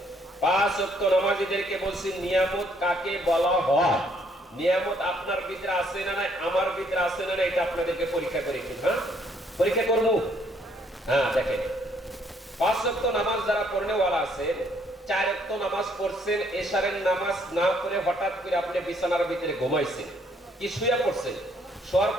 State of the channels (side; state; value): both; normal; correlation 0.67